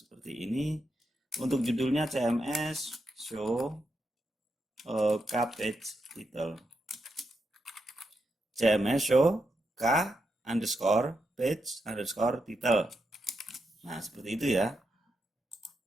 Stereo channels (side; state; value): both; normal; correlation 0.84